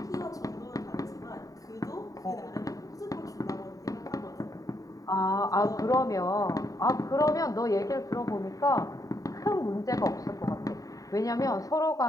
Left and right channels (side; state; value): right; late; 0.17 ms